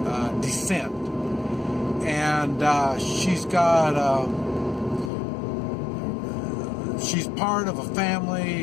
descent, and she's part of a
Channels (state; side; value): drops out; right; at 5.1 s